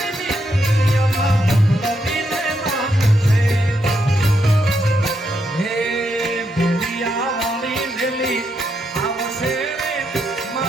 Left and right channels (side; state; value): both; normal; correlation 0.80